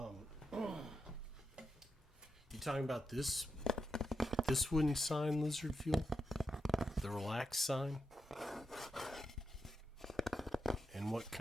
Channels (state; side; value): normal; both; correlation 0.86